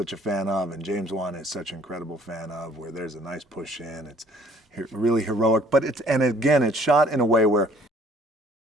a fan of, and James Wan is such an incredible fan of, where there's a nice push in. It's really heroic, but it's shot in a way where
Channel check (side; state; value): both; normal; correlation 0.57